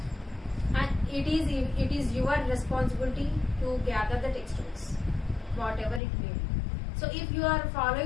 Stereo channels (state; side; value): drops out; right; at 6.0 s